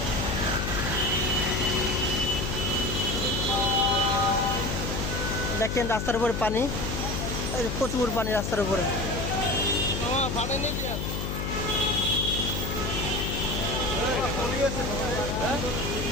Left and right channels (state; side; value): noise; left; hum, 3 dB below the sound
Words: দেখেন রাস্তার উপরে পানি, প্রচুর পানি রাস্তার উপরে।